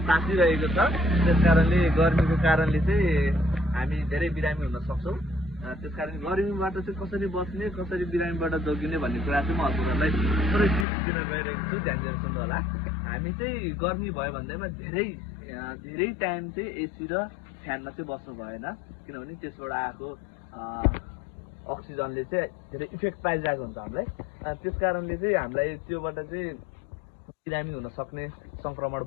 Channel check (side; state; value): right; drops out; at 10.9 s